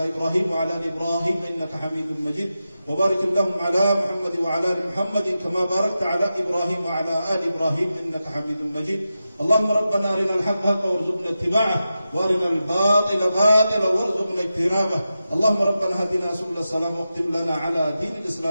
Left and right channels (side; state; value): both; inverted; correlation -0.91